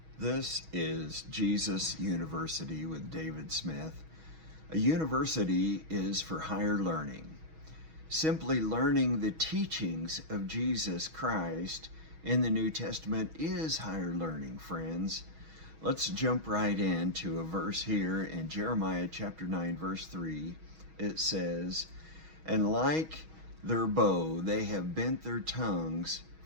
This is Jesus University with David Smith. A university is for higher learning. Simply learning the teachings of Jesus Christ in the New Testament is higher learning, friends. Let's jump right into a verse here in Jeremiah chapter 9, verse 3. It says, "And like their bow, they have bent their tongues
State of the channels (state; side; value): late; left; 6.3 ms